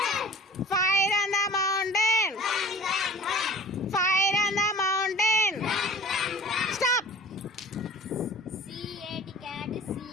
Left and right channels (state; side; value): normal; both; correlation 0.43